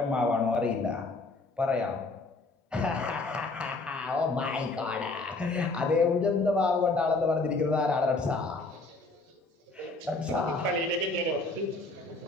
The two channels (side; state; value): right; quieter; 3.3 dB